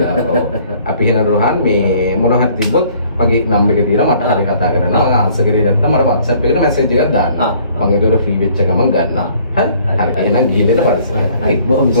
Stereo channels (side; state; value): both; inverted; correlation -0.58